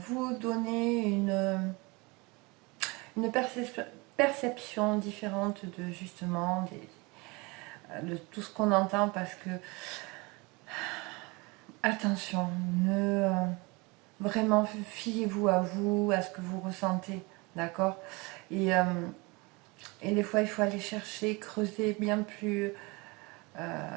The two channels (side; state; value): left; quieter; 26.4 dB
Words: vous donner une perception différente de justement de tout ce qu'on entend parce que attention, ne vraiment fiez-vous à vous, à ce que vous ressentez, d'accord, et, euh, et des fois il faut aller chercher, creuser bien plus